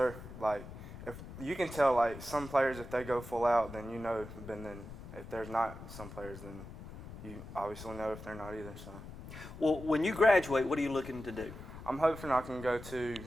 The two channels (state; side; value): noise; left; rumble, 13 dB below the sound